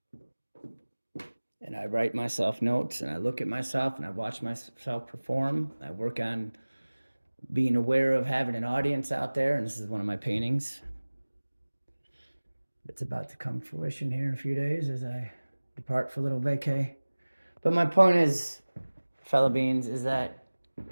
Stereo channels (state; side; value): inverted; both; correlation -1.00